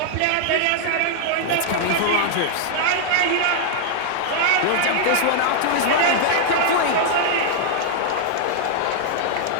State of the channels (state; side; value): different; both; correlation -0.01